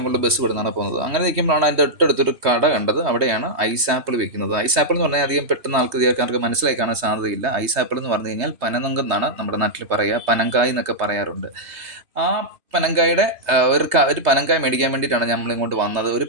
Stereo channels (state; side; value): late; left; 3.2 ms